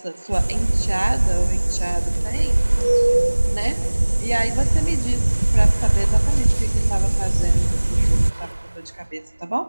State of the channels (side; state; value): both; inverted; correlation -1.00